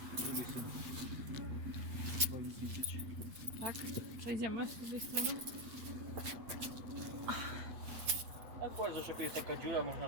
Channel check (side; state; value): left; late; 8.9 ms